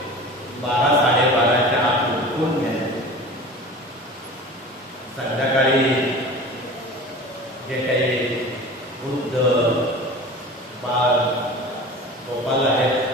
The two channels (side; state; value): both; normal; correlation 0.36